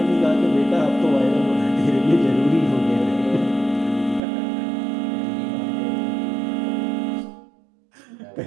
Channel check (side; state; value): left; drops out; at 4.2 s